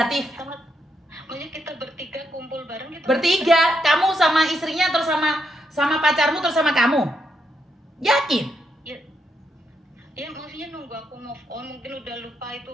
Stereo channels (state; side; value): normal; both; correlation 0.80